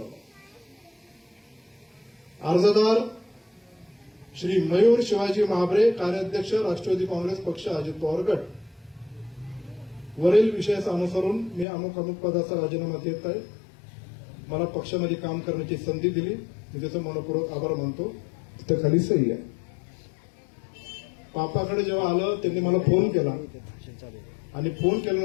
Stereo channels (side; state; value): right; drops out; at 11.7 s